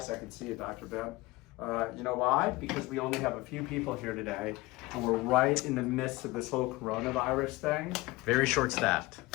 I can see you, Dr. Ben. You know why? Because we only have a few people here today, and we're right in the midst of this whole coronavirus thing. Very short staffed.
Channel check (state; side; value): quieter; right; 20.9 dB